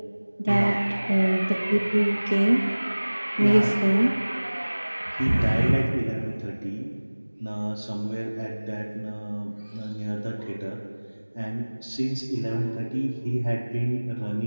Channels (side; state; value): both; inverted; correlation -1.00